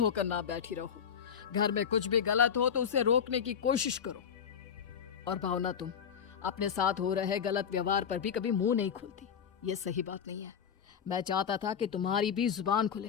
ना बैठी रहो। घर में कुछ भी गलत हो तो उसे रोकने की कोशिश करो। और भावना तुम अपने साथ हो रहे गलत व्यवहार पर भी कभी मुंह नहीं खोलती, ये सही बात नहीं है। मैं चाहता था कि तुम्हारी भी जुबान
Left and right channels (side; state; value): right; quieter; 7.7 dB